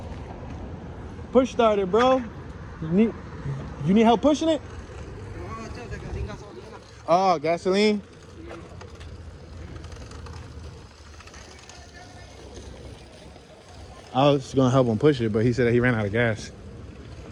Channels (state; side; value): identical; both; correlation 1.00